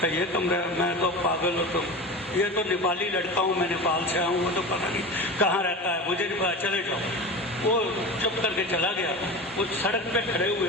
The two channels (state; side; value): normal; both; correlation 0.29